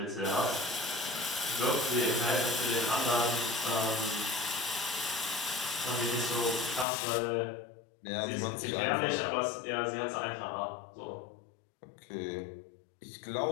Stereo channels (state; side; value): drops out; right; at 6.9 s